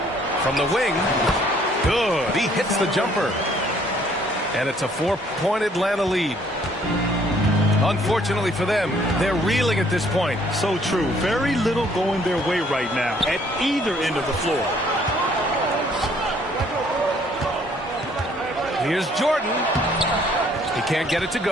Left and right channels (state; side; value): normal; both; correlation 0.62